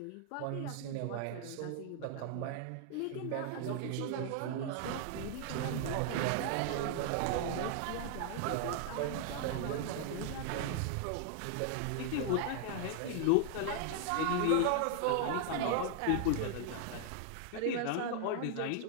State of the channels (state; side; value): different; both; correlation 0.00